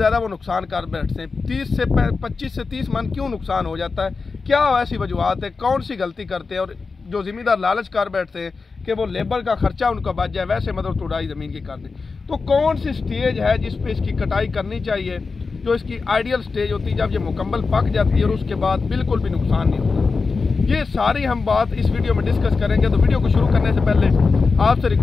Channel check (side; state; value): right; quieter; 4.4 dB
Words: वो नुकसान कर बैठते हैं। 25 से 30 मन क्यों नुकसान हो जाता है, क्या ऐसी वजूहत है, कौन सी गलती करते हैं। और जो ज़िम्मेदार लालच कर बैठते हैं कि वो लेबर का खर्चा उनका बच जाए, वैसे मतलब तुड़ाई ज़मीन की कर दें। तो कौन सी स्टेज है जिस पे इसकी कटाई करनी चाहिए, जो इसकी आइडियल स्टेज होती है जब ये मुकम्मल पक जाती है और उसके बाद बिल्कुल भी नुकसान नहीं होता। ये सारी हम बात इस वीडियो में डिस्कस करेंगे। तो वीडियो को शुरू करने से पहले आपसे